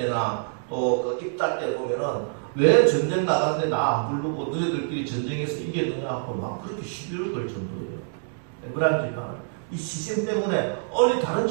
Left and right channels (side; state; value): left; silent; digital silence